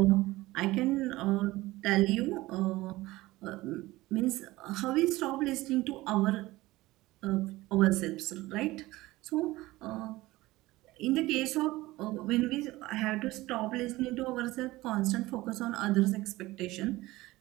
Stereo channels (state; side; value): quieter; left; 18.8 dB